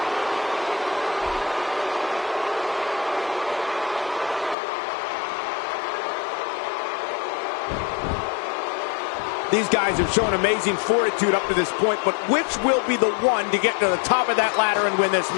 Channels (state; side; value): drops out; right; at 4.5 s